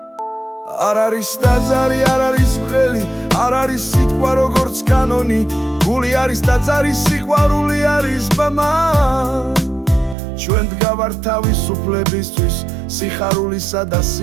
არ არის ტაძარი, არ არის ხელი, არ არის სიტყვა როგორც კანონი. გული არის ტაძარი, სიყვარული არის ბმა. ჩვენ დგავართ თავისუფლებისთვის, სიხარულისა და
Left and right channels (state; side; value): drops out; left; at 10.2 s